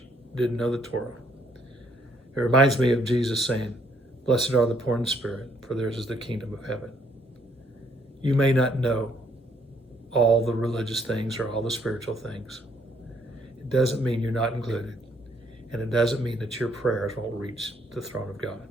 didn't know the Torah. It reminds me of Jesus saying, blessed are the poor in spirit, for theirs is the kingdom of heaven. You may not know all the religious things or all the spiritual things. It doesn't mean you're not included. And it doesn't mean that your prayers won't reach the throne of God.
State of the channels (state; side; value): normal; both; correlation 0.68